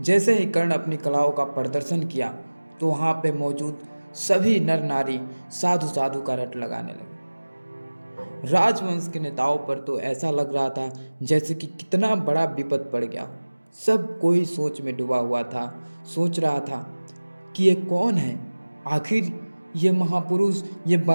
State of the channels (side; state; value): both; inverted; correlation -1.00